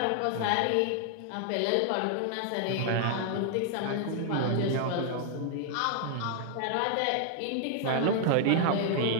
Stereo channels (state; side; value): different; both; correlation 0.00